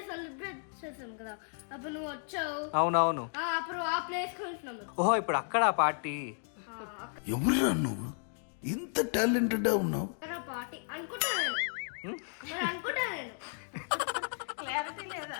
సెలబ్రేట్ చేసాం కదా, అప్పుడు నువ్వు వచ్చావు. అవునవును, అప్పుడు ఆ ప్లేస్ కొంటున్నాము. ఓహో ఇప్పుడు అక్కడ పార్టీ. ఎవరురా నువ్వు ఇంత టాలెంటెడ్ ఉన్నావు? పార్టీ అనుకుంటా నేను. మరి అనుకుంటా నేను. క్లారిటీ లేదా?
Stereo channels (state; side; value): silent; right; 55 dB below the other